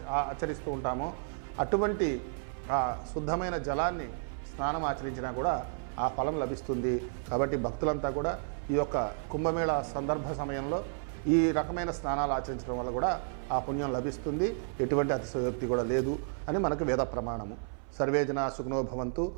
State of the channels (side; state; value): left; silent; 56 dB below the other